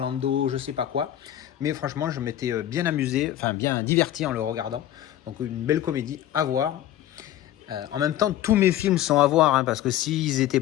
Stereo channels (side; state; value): right; quieter; 12.3 dB